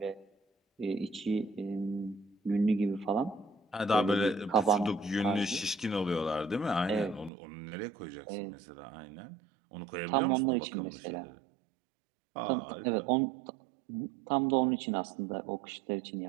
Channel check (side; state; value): left; drops out; at 7.3 s